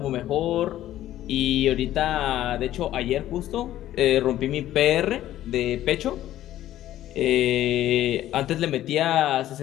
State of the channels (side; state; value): right; quieter; 13.3 dB